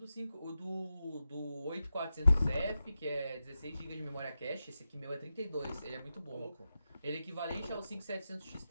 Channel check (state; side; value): inverted; both; correlation -0.91